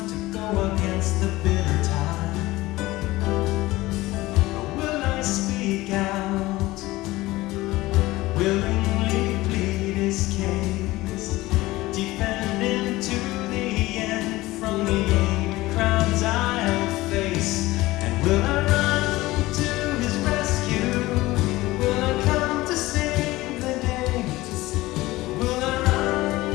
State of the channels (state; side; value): quieter; right; 18.7 dB